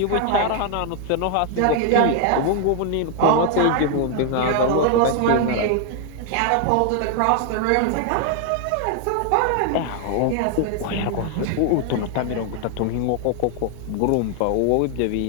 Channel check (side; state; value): both; different; correlation 0.00